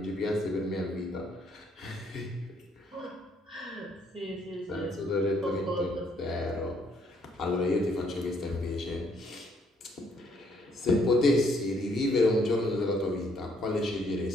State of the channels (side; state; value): both; normal; correlation 0.69